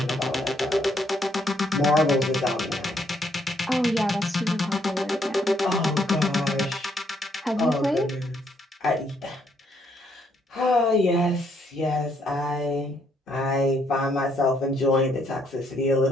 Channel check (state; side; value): normal; both; correlation 0.71